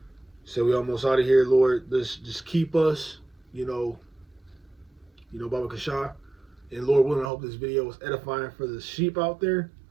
said we almost out of here, Lord. Just keep us. Baba Kasha, and Lord willing, I hope this video was edifying for the sheep out there.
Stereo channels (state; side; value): drops out; left; at 7.3 s